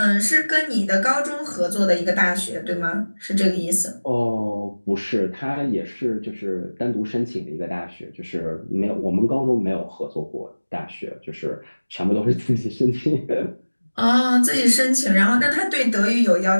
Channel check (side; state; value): both; inverted; correlation -1.00